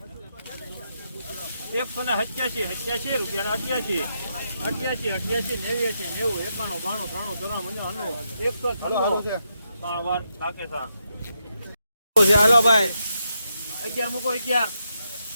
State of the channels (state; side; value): inverted; both; correlation -0.83